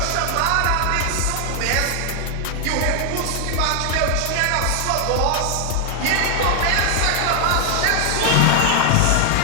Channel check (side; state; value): both; different; correlation 0.00